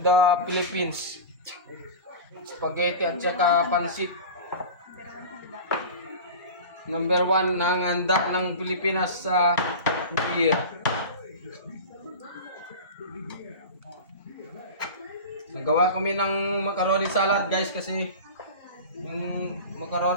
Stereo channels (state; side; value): inverted; both; correlation -0.31